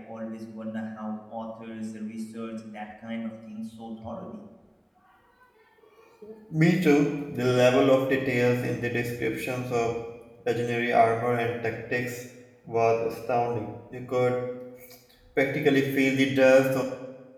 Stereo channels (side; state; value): both; identical; correlation 1.00